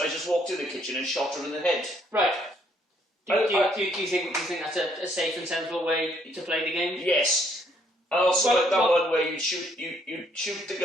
I just walked in the kitchen and shot her in the head. Right. Do you think that's a safe and sensible way to play the game? Yes. And also like that one where you'd shoot the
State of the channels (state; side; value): normal; both; correlation 0.68